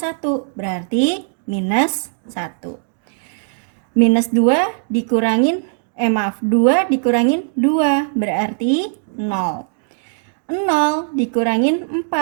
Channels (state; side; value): silent; left; 66 dB below the other